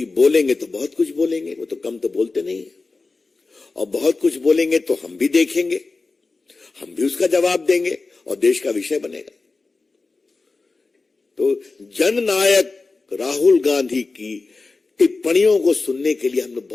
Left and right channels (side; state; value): right; quieter; 3.8 dB